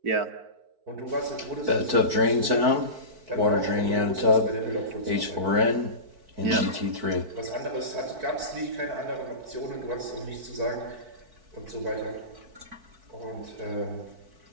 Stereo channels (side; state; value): left; late; 4.6 ms